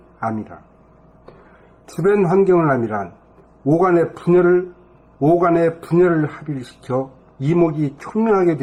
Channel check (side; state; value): both; identical; correlation 1.00